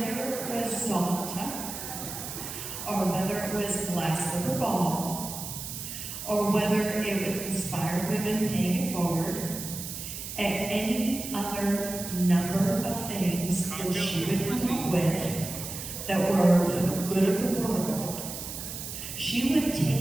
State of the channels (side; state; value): right; noise; hiss, 8 dB below the sound